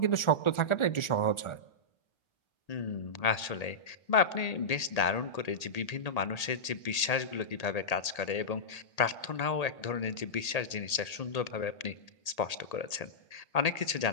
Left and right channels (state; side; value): late; right; 1.8 ms